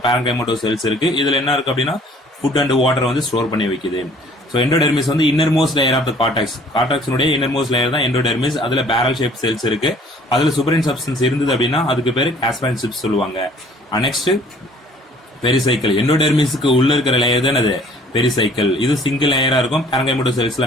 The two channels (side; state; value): both; normal; correlation 0.55